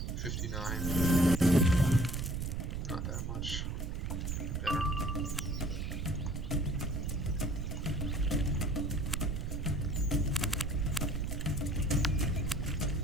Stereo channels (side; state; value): right; noise; rumble, 2 dB below the sound